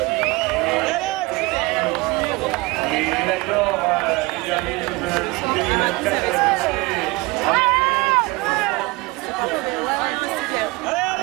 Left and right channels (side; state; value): left; quieter; 23.5 dB